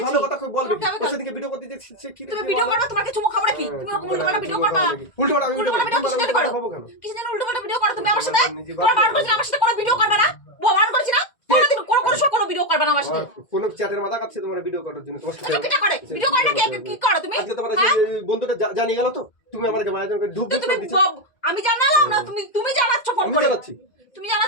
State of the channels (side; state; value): right; late; 2.1 ms